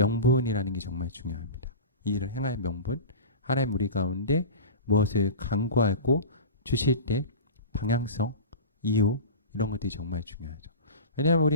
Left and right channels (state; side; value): inverted; both; correlation -0.31